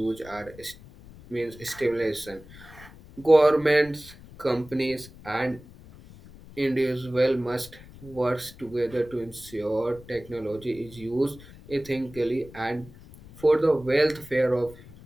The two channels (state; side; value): noise; left; rumble, 20 dB below the sound